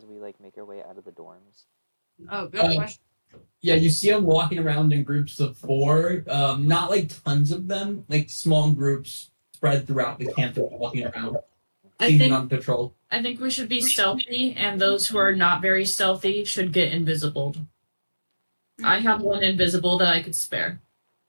we like make our way out of the dorms? Oh, good question. Yeah, you see them walking around in groups of 4. Not like tons of them, like small groups spread throughout the campus walking around, I seeming think on patrol. we should be stealthy, and those who are not very stealthy should get invisible. I have one invisible that I could spare.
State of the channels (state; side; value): inverted; both; correlation -1.00